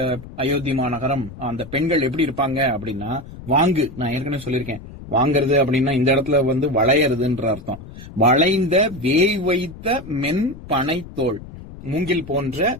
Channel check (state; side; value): noise; left; rumble, 15 dB below the sound